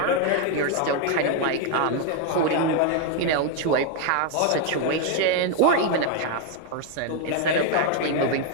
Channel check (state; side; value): different; both; correlation 0.01